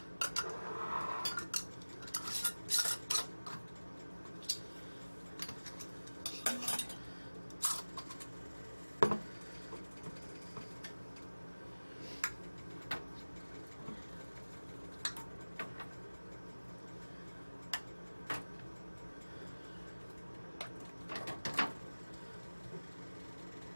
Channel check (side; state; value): both; inverted; correlation -1.00